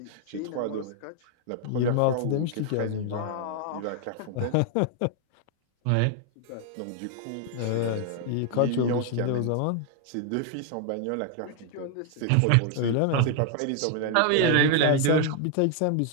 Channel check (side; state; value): both; different; correlation 0.00